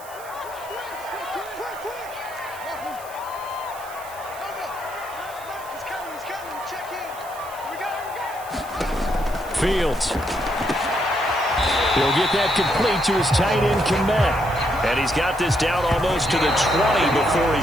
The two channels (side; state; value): right; noise; hiss, 18 dB below the sound